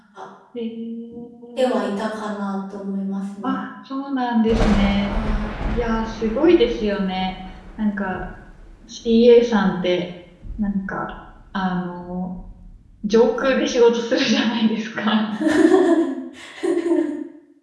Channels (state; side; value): identical; both; correlation 1.00